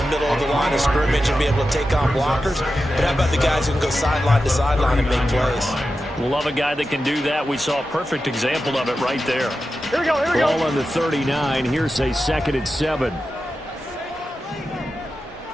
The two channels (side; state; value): both; normal; correlation 0.91